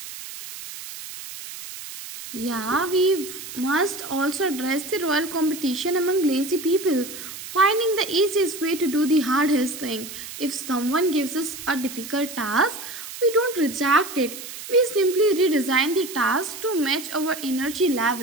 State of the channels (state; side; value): noise; right; hiss, 11 dB below the sound